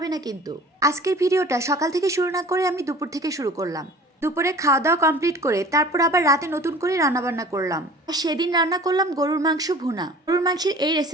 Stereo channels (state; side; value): normal; both; correlation 0.44